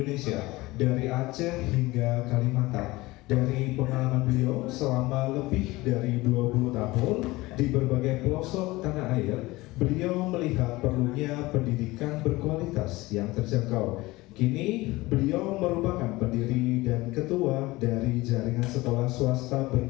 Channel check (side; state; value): right; quieter; 20.4 dB